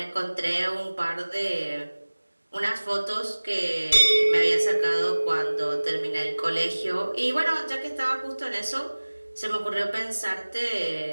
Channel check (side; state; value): both; inverted; correlation -1.00